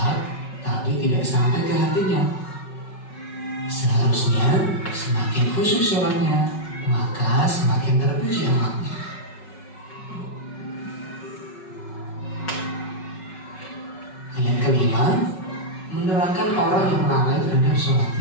tapi tidak sampai ke hatinya. Seharusnya semakin khusyuk sholatnya, maka semakin terpuji akhlaknya. Ayat kelima, menerangkan orang yang lalai terhadap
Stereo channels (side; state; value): right; late; 5.4 ms